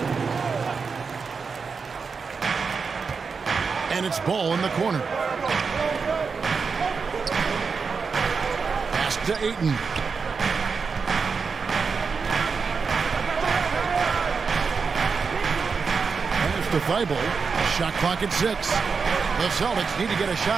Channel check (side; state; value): left; quieter; 5.2 dB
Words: And it's Ball in the corner. Pass to Ayton. Pass to Thibault. Shot clock at 6. The Celtics need to get a